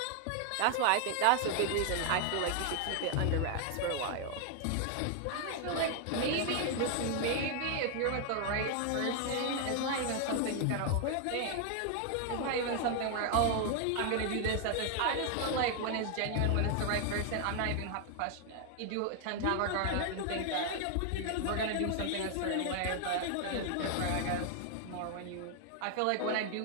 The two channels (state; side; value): different; both; correlation 0.00